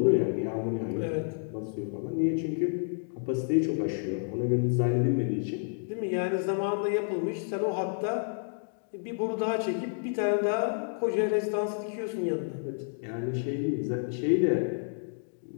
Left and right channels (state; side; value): silent; right; digital silence